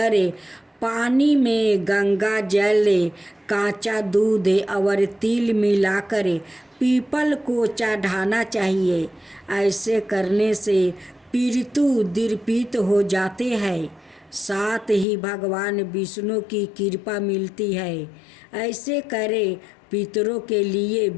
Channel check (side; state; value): right; drops out; at 15.1 s